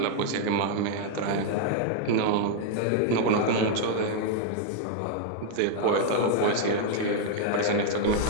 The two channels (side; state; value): both; different; correlation 0.00